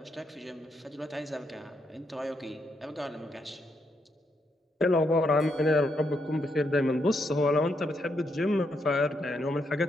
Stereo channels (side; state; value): both; normal; correlation 0.78